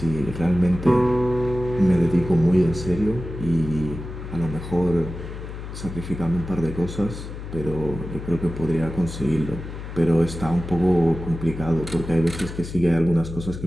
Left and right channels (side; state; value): left; noise; hum, 9 dB below the sound